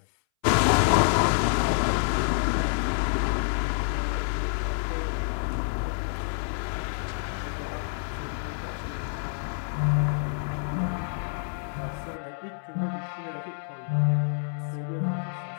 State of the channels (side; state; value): right; silent; 60 dB below the other